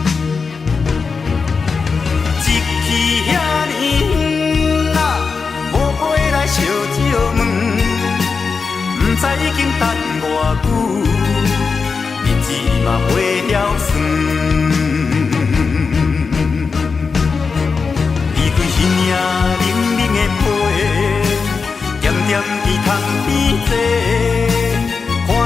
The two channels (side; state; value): right; quieter; 5.0 dB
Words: 一去遐尼远啊，无回来烧酒问，不知已经等偌久，日子嘛过了算。伊领冷冷的被，点点伫窗边坐，看